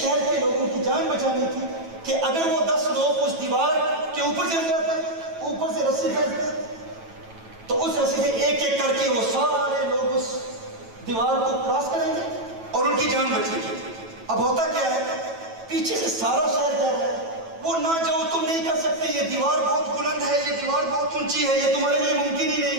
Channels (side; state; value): left; late; 9.1 ms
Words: کے لوگوں کی جان بچانی تھی کہ اگر وہ 10 لوگ اس دیوار کے اوپر چل جاتے, اوپر سے رسی پھینکتے, تو اس رسی سے ایک ایک کر کے وہ سارے لوگ اس دیوار کو کراس کریں گے اور ان کی جان بچے گی. اب ہوتا کیا ہے, پیچھے سے سارا شہر کہہ رہا ہے وہ نہ جاؤ, تم نہیں کر سکتے, یہ دیوار بہت بلند ہے, یہ دیوار بہت اونچی ہے, یہ تمہارے لیے ممکن ہی